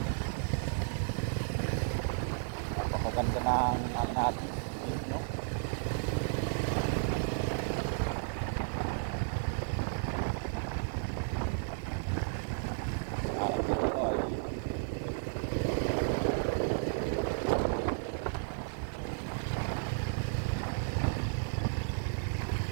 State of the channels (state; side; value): silent; left; digital silence